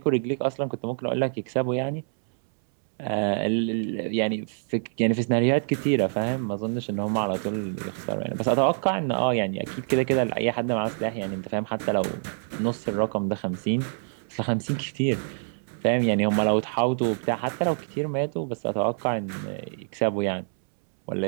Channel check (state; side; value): silent; left; 61 dB below the other